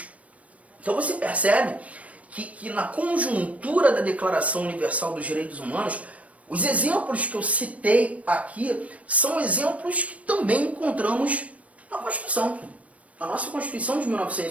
Então você percebe que na conjuntura da Declaração Universal dos Direitos Humanos, os exemplos que eu citei aqui são exemplos que também encontramos na Constituição, na nossa Constituição de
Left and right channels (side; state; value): left; late; 0.066 ms